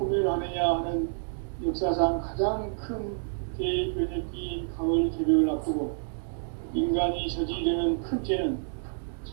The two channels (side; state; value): left; silent; digital silence